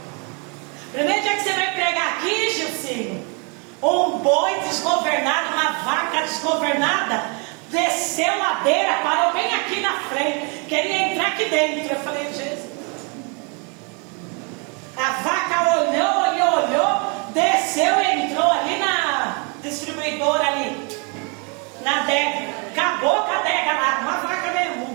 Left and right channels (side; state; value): left; quieter; 34.5 dB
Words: Primeiro dia que você veio pregar aqui, Gilcinho, um boi desgovernado, uma vaca desgovernada, desceu ladeira, parou bem aqui na frente, queria entrar aqui dentro. Eu falei: Jesus. A vaca olhou, desceu e entrou ali na distribuidora ali, na adega. Acabou com a adega lá, uma vaca mesmo, um